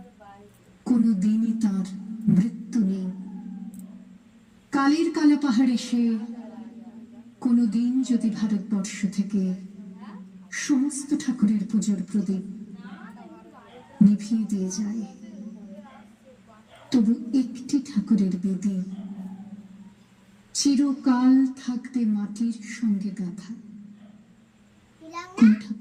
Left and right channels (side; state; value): both; identical; correlation 1.00